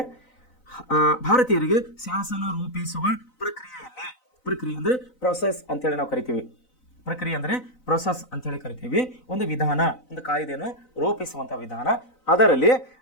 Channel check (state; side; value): late; right; 4.0 ms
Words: ಭಾರತೀಯರಿಗೆ ಶಾಸನ ರೂಪಿಸುವ ಪ್ರಕ್ರಿಯೆ ಅಂದರೆ ಪ್ರೊಸೆಸ್ ಅಂತೇಳಿ ನಾವು ಕರಿತೀವಿ. ಪ್ರಕ್ರಿಯೆ ಅಂದರೆ ಪ್ರೊಸೆಸ್ ಅಂತೇಳಿ ಕರಿತೀವಿ. ಒಂದು ವಿಧಾನ, ಒಂದು ಕಾಯ್ದೆಯನ್ನು ರೂಪಿಸುವಂಥ ವಿಧಾನ, ಅದರಲ್ಲಿ